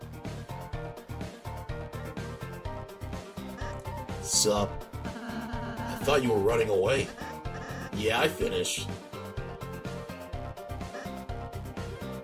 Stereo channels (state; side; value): identical; both; correlation 1.00